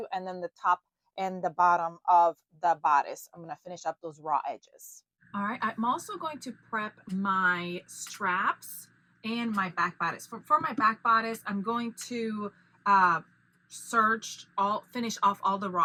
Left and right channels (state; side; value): identical; both; correlation 1.00